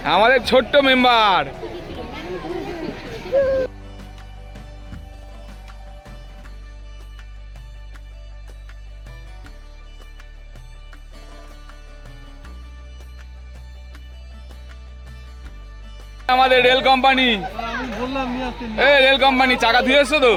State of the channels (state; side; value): identical; both; correlation 1.00